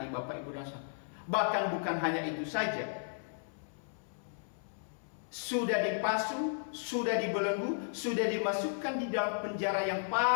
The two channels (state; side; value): silent; right; 55 dB below the other